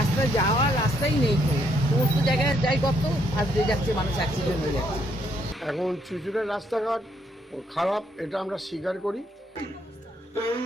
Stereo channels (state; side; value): normal; both; correlation 0.72